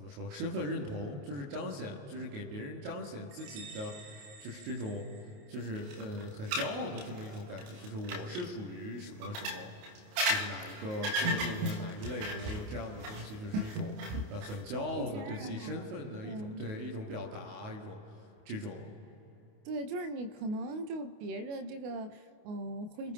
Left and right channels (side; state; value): left; late; 28 ms